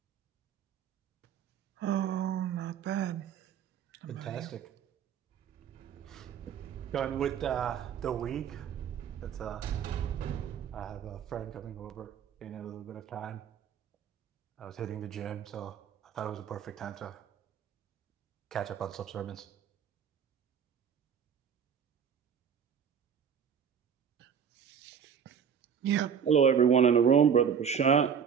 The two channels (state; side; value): quieter; left; 7.6 dB